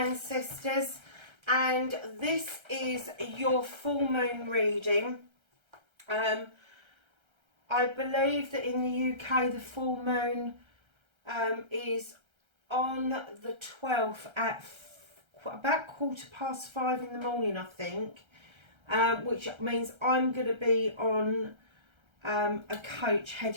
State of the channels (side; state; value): left; late; 1.3 ms